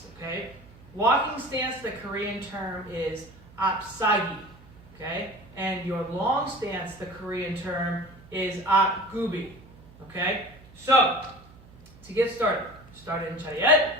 okay? Walking stance, the Korean term is apsagi, okay? And your long stance, the Korean term is apgubi, okay? So, to get started, start in chariot,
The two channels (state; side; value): noise; right; hum, 23 dB below the sound